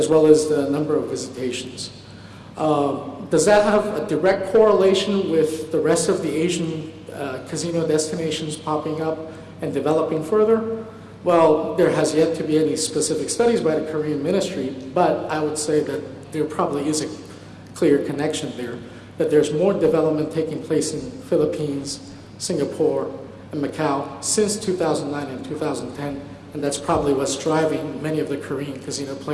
well as the number of visitations. Does that have a direct correlation with the rest of the Asian casino destinations popping up and developing further? Well, there has yet to be any specific studies by the Korean ministry, but I would say that there probably is a clear connection there, that there's more development taking place in Philippines, Singapore, and Macau since 2009 and 2010, and that's probably what's driving many of the Korean casino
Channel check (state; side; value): identical; both; correlation 1.00